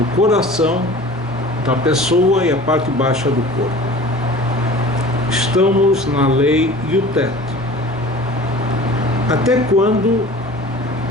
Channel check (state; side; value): normal; both; correlation 0.42